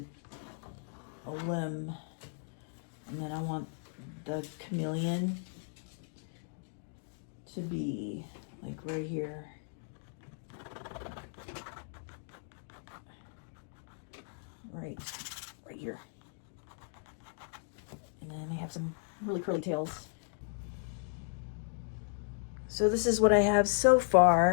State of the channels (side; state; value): right; silent; digital silence